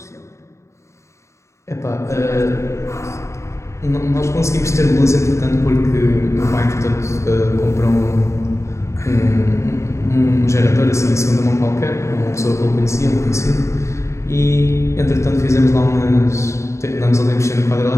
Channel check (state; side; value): late; right; 0.14 ms